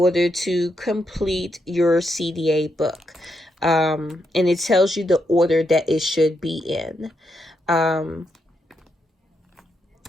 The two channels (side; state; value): both; normal; correlation 0.81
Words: to complete your CDA book. And it tells you the order that it should be in. My